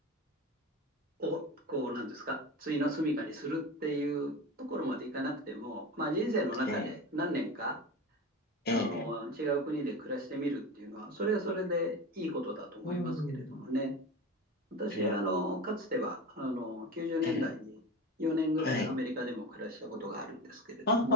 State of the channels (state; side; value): normal; both; correlation 0.28